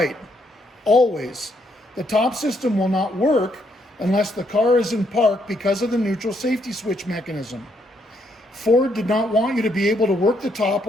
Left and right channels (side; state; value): both; normal; correlation 0.73